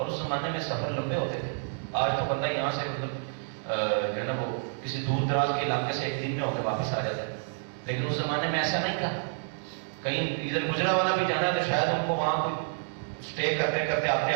اس زمانے میں سفر لمبے ہوتے تھے، آج تو بندہ یہاں سے مطلب جو ہے نا وہ کسی دور دراز کے علاقے سے ایک دن میں ہو کے واپس آ جاتا ہے، لیکن اس زمانے میں ایسا نہیں تھا، کہیں ادھر گجرا والا بھی جانا ہے تو شاید ان کو وہاں کوئی اسٹے کرتے کرتے آتے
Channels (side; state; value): left; silent; 59 dB below the other